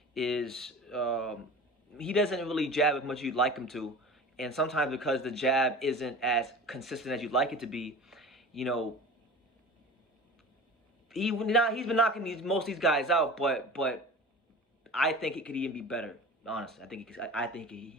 is he doesn't really jab as much as you'd like him to, and sometimes because the jab isn't as consistent as you'd like it to be, you know, he's been knocking most of these guys out, but I think it could even be better. Honestly, I think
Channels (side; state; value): both; normal; correlation 0.37